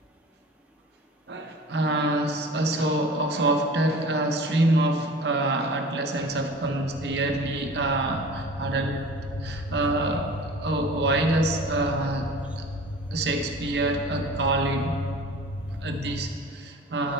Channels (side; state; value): both; normal; correlation 0.41